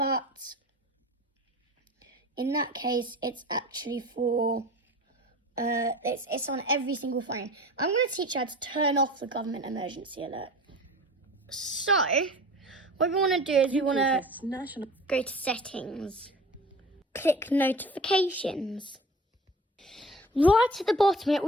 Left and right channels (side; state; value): both; normal; correlation 0.40